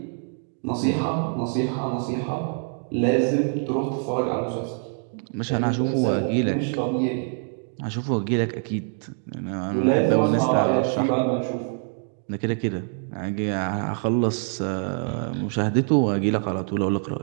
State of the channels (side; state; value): left; silent; 58 dB below the other